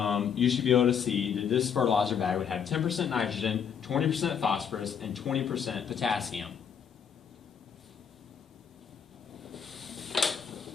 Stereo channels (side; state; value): right; quieter; 7.5 dB